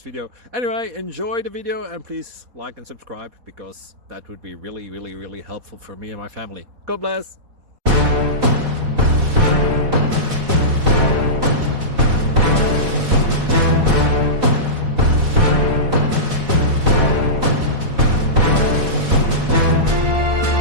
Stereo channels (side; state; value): left; late; 4.1 ms